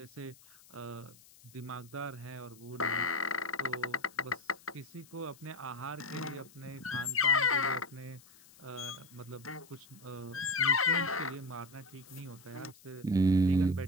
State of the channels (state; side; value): noise; left; hiss, 24 dB below the sound